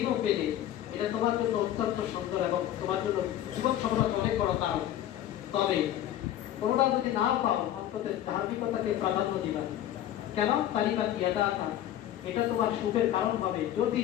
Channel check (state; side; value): quieter; right; 12.0 dB